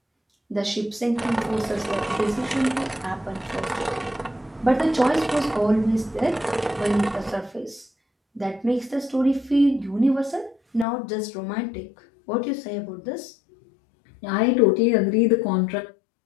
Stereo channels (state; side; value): drops out; right; at 10.9 s